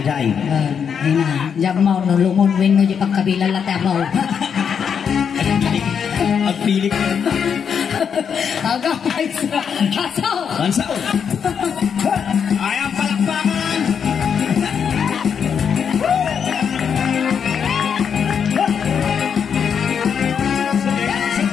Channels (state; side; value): quieter; right; 7.2 dB